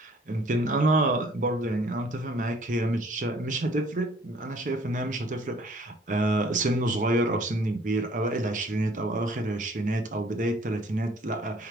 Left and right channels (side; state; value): both; normal; correlation 0.57